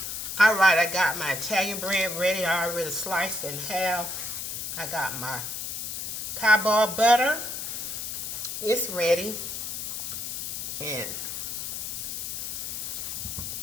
All right, I got my Italian bread ready. I already sliced in half. I got my Cowboy Butter. It's ready.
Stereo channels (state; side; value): noise; left; hiss, 5 dB below the sound